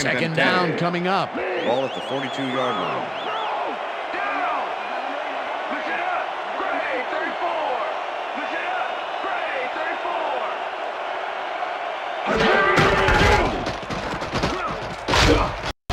down coming up. Ball at the 42-yard line.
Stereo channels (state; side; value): identical; both; correlation 1.00